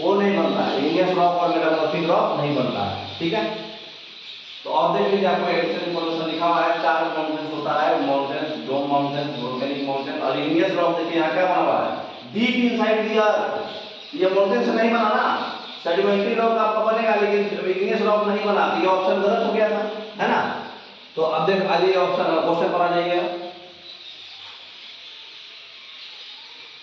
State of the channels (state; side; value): identical; both; correlation 1.00